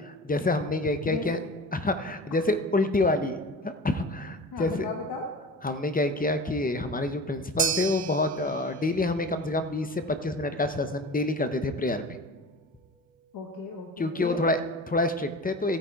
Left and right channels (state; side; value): normal; both; correlation 0.36